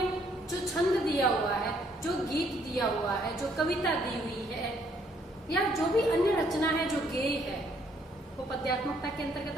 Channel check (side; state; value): both; normal; correlation 0.68